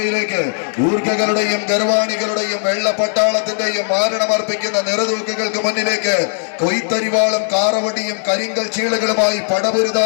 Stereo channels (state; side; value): silent; right; digital silence